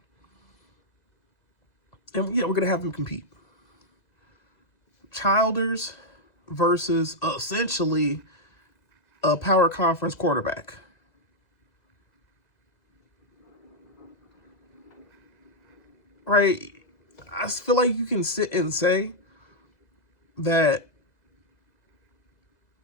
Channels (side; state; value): right; late; 2.1 ms